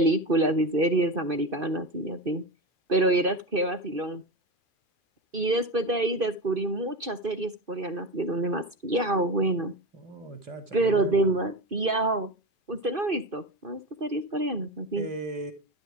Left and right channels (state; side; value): late; left; 2.5 ms